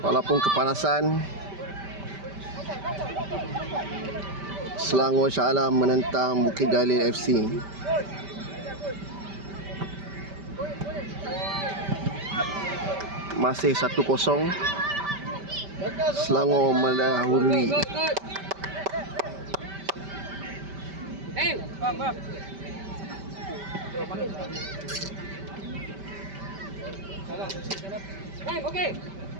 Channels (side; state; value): left; late; 5.1 ms